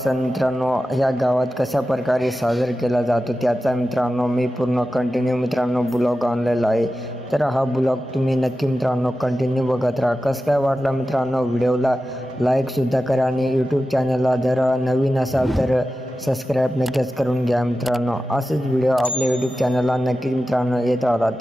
मित्रांनो ह्या गावात कशा प्रकारे साजरा केला जातो त्याचा मित्रांनो मी पूर्ण कंटिन्यू मित्रांनो ब्लॉग आणलेला आहे. तर हा ब्लॉग तुम्ही नक्की मित्रांनो कंटिन्यू बघत राहा. कसं काय वाटला मित्रांनो व्हिडिओला लाईकसुद्धा करा आणि यूट्यूब चॅनलला जर नवीन असाल तर सबस्क्राईब नक्कीच करून घ्या मित्रांनो. असेच व्हिडिओ आपल्या यूट्यूब चॅनलला नक्कीच मित्रांनो येत राहतात.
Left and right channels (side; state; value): both; normal; correlation 0.93